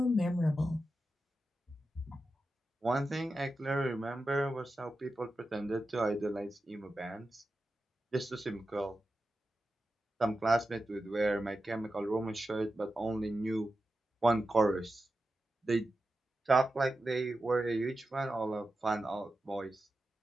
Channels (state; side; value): normal; both; correlation 0.91